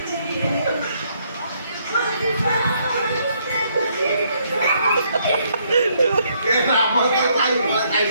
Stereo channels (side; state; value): both; inverted; correlation -0.71